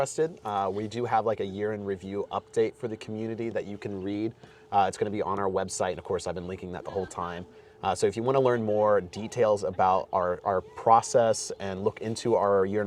we do have like a year in review update for the community that you can read. It's going to be on our website, and of course I've been linking that the whole time. So if you want to learn more details about our process and look into our year in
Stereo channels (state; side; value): identical; both; correlation 1.00